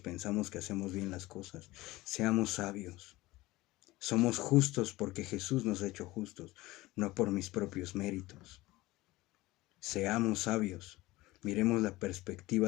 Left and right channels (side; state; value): right; quieter; 19.2 dB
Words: que hacemos bien las cosas. Seamos sabios. Somos justos porque Jesús nos ha hecho justos, no por mis propios méritos. Seamos sabios. Miremos la